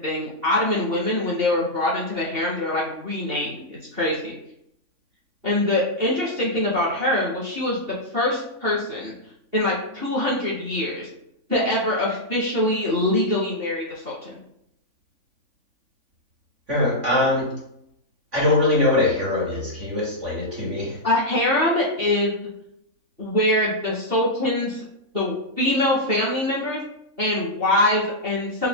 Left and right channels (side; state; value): left; late; 3.5 ms